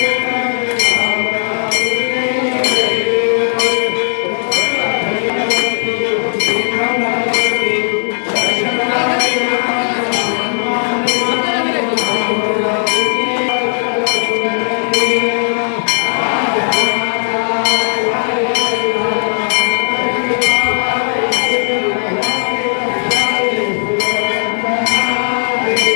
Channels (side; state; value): right; silent; digital silence